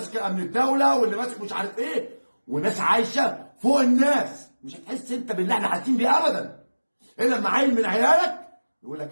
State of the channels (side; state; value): both; inverted; correlation -1.00